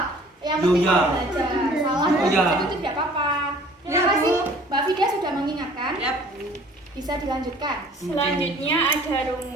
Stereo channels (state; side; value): normal; both; correlation 0.52